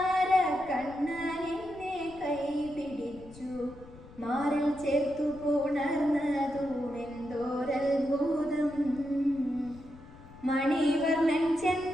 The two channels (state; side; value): noise; left; rumble, 20 dB below the sound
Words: കണ്ണനെന്നെ കൈപിടിച്ചു മാറിൽ ചേർത്തു പുണർന്നതുമെന്തോരത്ഭുതം. മണിവർണ്ണൻ